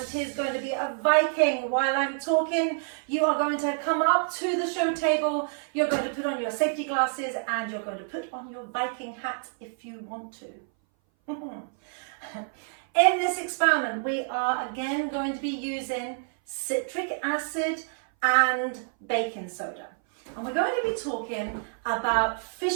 is going to be a Viking. While I'm talking, you are going to come up to the show table. You're going to put on your safety glasses and you're going to put on your Viking hat if you want to. In this experiment, we are again going to be using citric acid and baking soda. And we're going to be talking about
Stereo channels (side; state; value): left; silent; 58 dB below the other